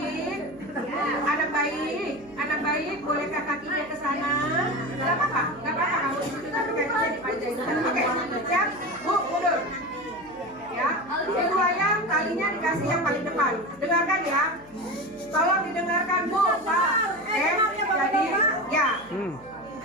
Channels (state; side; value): noise; right; hum, 25 dB below the sound